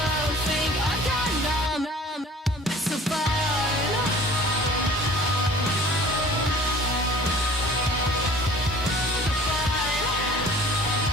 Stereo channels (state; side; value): normal; both; correlation 0.48